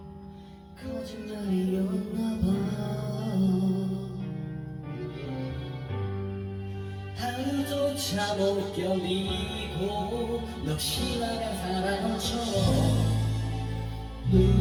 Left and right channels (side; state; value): both; identical; correlation 1.00